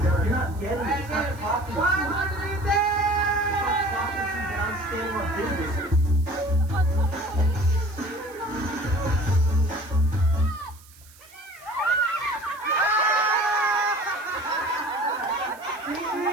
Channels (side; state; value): right; noise; hiss, 24 dB below the sound